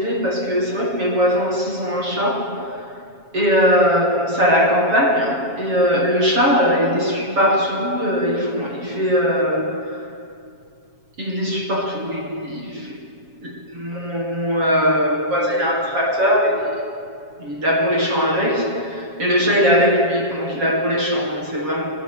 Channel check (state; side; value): late; left; 7.3 ms